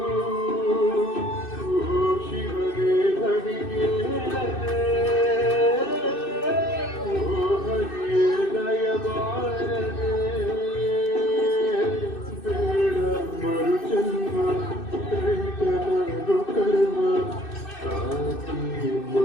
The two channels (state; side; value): late; right; 2.6 ms